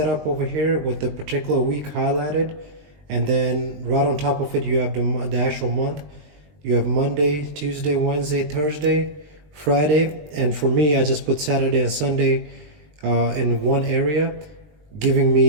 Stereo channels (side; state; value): left; late; 20 ms